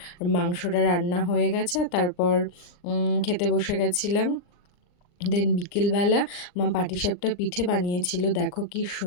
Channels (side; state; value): right; late; 39 ms